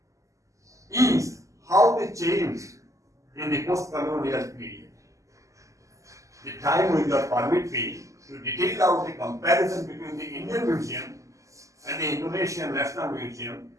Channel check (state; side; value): late; left; 0.16 ms